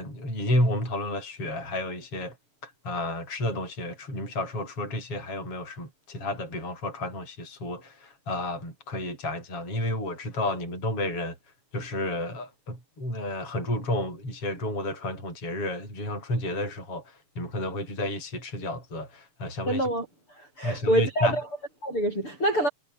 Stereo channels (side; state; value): right; late; 7.2 ms